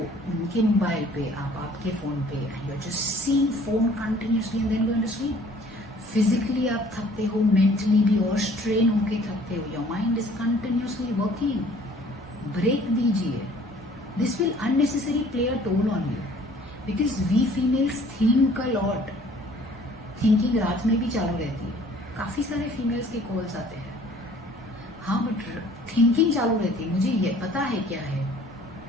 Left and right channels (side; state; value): both; normal; correlation 0.54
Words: उनके मोबाइल पे, आप आपके फोन पे, and you are just seeing phone continuously and then going to sleep. Physically आप थकते हो, मेंटली भी और स्ट्रेन होके थकते हो, your mind is continuously working. Break दीजिए। This will unnecessary play a toll on you because we females think a lot. Thinking रात में भी चालू रहती है, काफी सारे फीमेल्स के कॉल्स आते हैं। हाँ, बट थिंकिंग चालू रहती है, मुझे ये पता है क्या है।